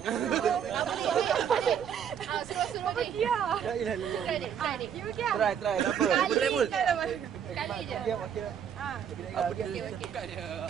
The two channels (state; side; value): quieter; left; 8.3 dB